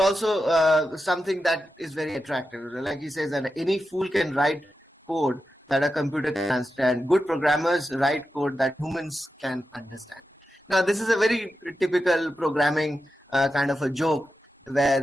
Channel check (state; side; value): normal; both; correlation 0.90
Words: something that is very attractive. Like he says that any fool can write code that a computer can understand. Good programmers write code that humans can understand. Now, this is a very typical programming kind of a joke